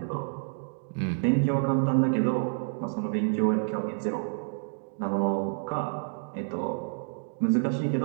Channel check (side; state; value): left; silent; digital silence